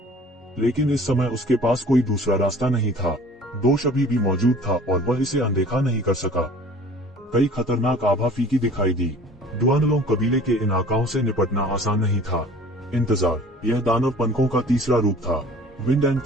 लेकिन इस समय उसके पास कोई दूसरा रास्ता नहीं था। दोष अभी भी मौजूद था और वह इसे अनदेखा नहीं कर सका। कई खतरनाक आभा फीकी दिखाई दी। डुआनलोंग कबीले के इन आकाओं से निपटना आसान नहीं था। इंतजार, यह दानव पंखों का तीसरा रूप था। विंड एंड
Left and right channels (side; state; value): both; normal; correlation 0.48